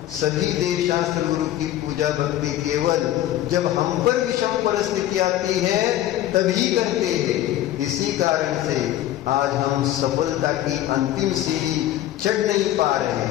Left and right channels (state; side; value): quieter; right; 13.2 dB